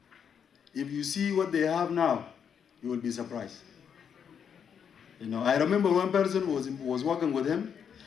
if you see what they have now, you will be surprised. You know, I remember one person was working with him.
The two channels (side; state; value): right; quieter; 7.6 dB